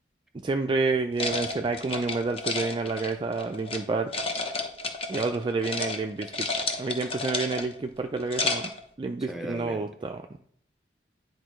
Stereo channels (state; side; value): normal; both; correlation 0.43